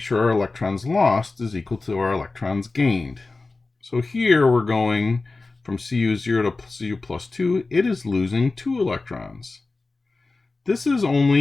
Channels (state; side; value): quieter; right; 3.6 dB